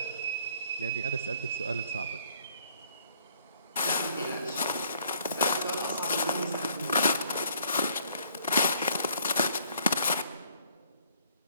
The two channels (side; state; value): both; inverted; correlation -0.62